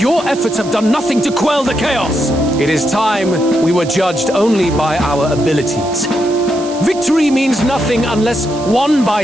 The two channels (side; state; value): right; noise; hiss, 16 dB below the sound